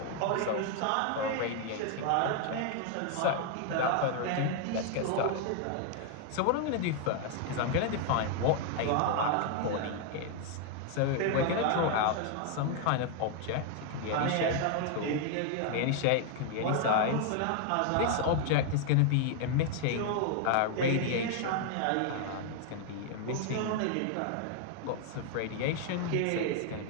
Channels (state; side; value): different; both; correlation 0.00